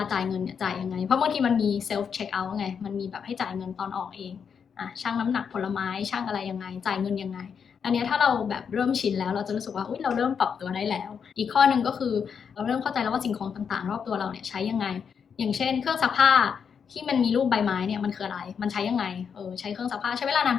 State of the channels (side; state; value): right; quieter; 6.8 dB